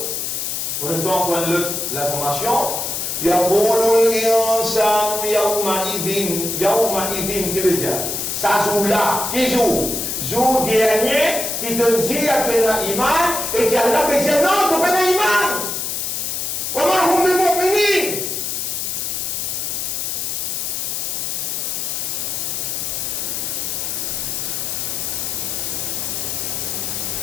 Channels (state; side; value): noise; left; hiss, 2 dB below the sound